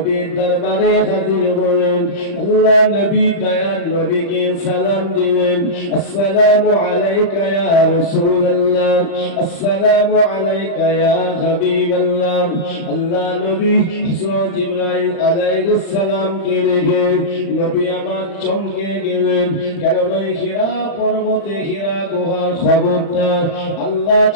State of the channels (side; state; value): right; late; 35 ms